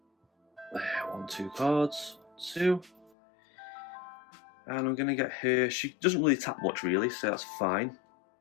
1, 2 cards. 2. And I'm going to get her. She doesn't really tap much, really, so that's fine.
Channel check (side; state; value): right; drops out; at 3.1 s